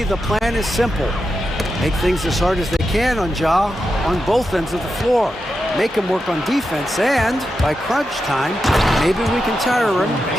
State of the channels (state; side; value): normal; both; correlation 0.88